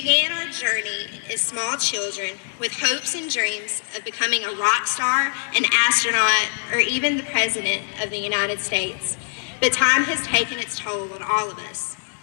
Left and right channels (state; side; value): silent; right; digital silence